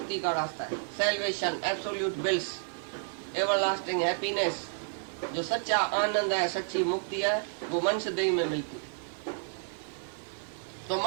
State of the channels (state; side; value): silent; left; 57 dB below the other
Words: का रास्ता है। Salvation, absolute bills, everlasting happiness, जो सच्चा आनंद है, सच्ची मुक्ति है, वो मनुष्य देह में मिलती है। तो